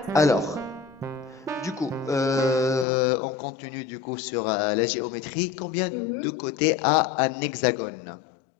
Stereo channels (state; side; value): drops out; right; at 2.9 s